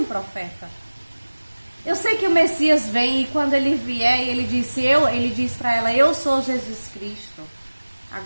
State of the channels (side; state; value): both; inverted; correlation -1.00